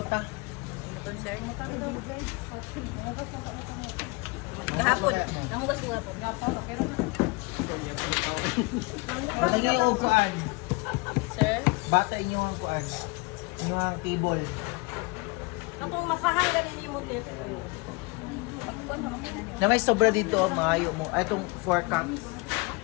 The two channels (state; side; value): quieter; right; 26.9 dB